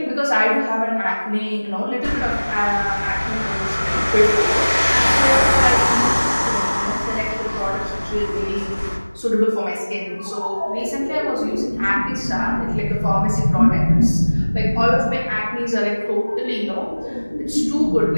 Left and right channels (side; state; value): both; inverted; correlation -1.00